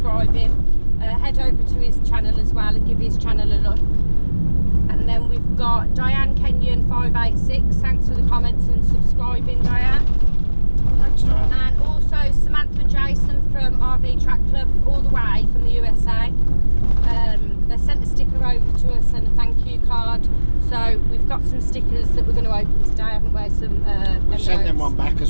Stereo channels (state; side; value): inverted; both; correlation -1.00